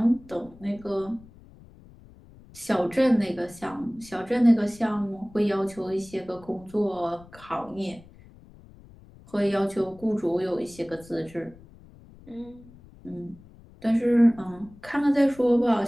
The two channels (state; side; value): noise; left; rumble, 23 dB below the sound